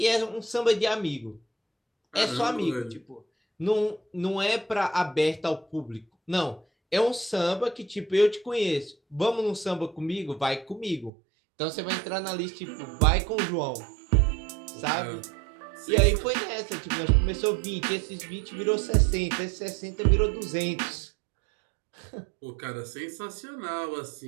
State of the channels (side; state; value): left; drops out; at 11.1 s